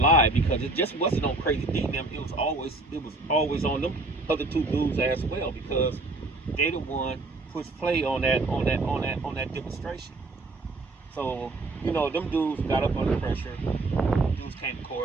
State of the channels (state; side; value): quieter; left; 3.1 dB